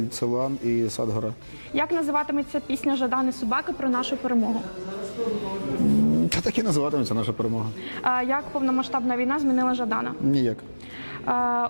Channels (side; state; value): both; inverted; correlation -1.00